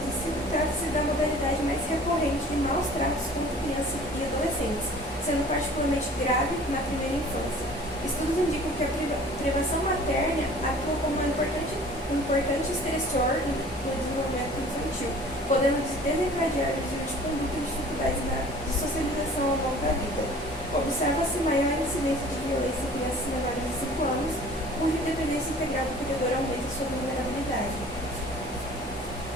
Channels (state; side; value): normal; both; correlation 0.48